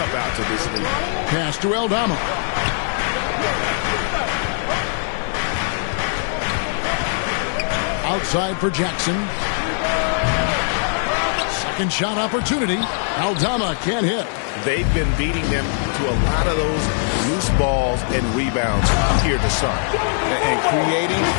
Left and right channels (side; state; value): right; silent; 65 dB below the other